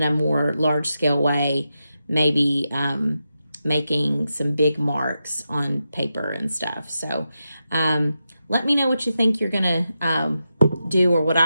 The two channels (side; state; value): both; inverted; correlation -0.88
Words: a more large scale way, maybe making some big marks on paper and stuff. So let me know what you think you're gonna do or what